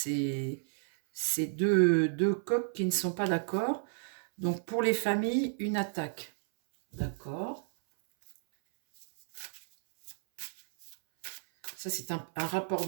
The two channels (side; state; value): left; silent; 56 dB below the other